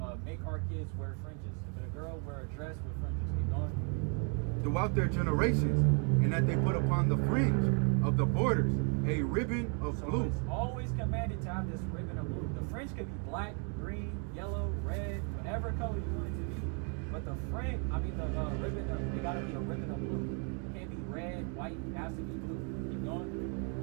make our kids wear fringes. If it's a girl, wear a dress with fringes. Keep going. Throughout their generations, and that they put upon the fringe of the borders a ribbon of So blue. it's always commanded to have this ribbon of blue. The fringe could be black, green, yellow, red, whatever color you want it to be. But the fringe, the ribbon, it gotta be a ribbon of blue. It can't be red, white, it has to be blue. Keep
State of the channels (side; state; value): left; quieter; 38.8 dB